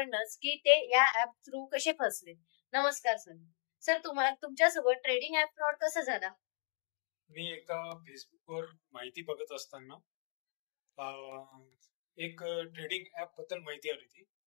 की ते या ऍप थ्रू कसे फसले. नमस्कार सर. सर तुम्हाला तुमच्यासोबत ट्रेडिंग ऍप फ्रॉड कसा झाला? मी एका फेसबुकवर माहिती बघत असताना एक ट्रेडिंग ऍप बद्दल माहिती आली होती.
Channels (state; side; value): silent; right; 53 dB below the other